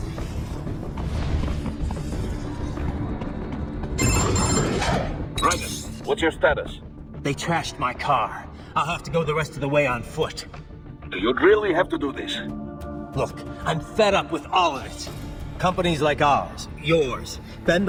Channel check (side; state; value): both; identical; correlation 1.00